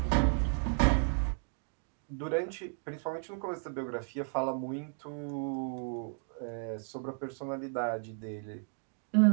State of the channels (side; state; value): left; silent; 55 dB below the other